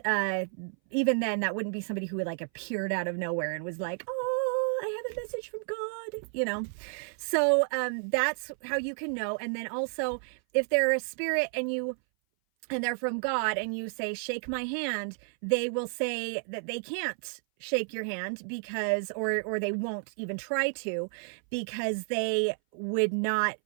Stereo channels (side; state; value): left; silent; 57 dB below the other